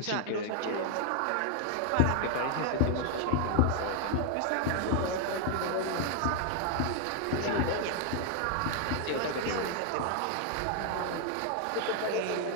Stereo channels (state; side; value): different; both; correlation 0.00